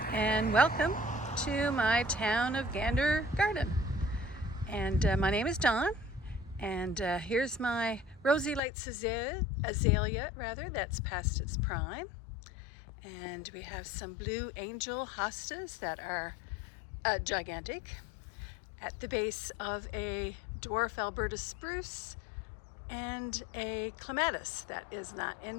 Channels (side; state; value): right; drops out; at 8.6 s